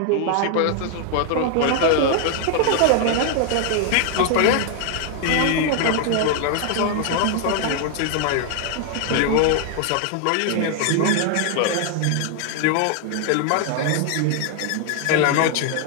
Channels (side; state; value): both; different; correlation 0.00